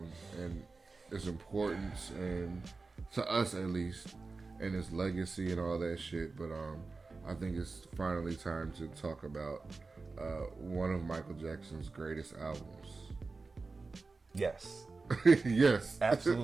and its importance, and to us at least, and its legacy and all that shit. But I think it's finally time to talk about one of Michael Jackson's greatest albums. Yes. Yes.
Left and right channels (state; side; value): quieter; left; 3.9 dB